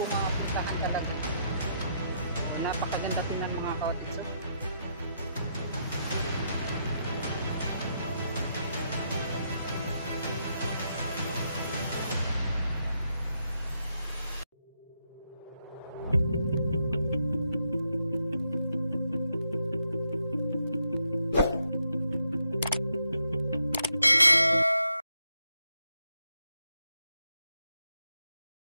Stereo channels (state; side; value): inverted; both; correlation -0.79